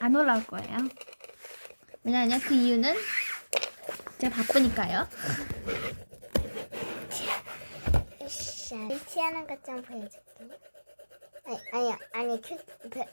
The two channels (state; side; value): inverted; both; correlation -1.00